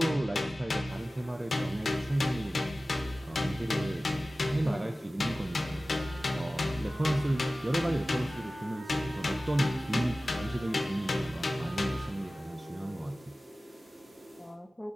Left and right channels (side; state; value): both; normal; correlation 0.96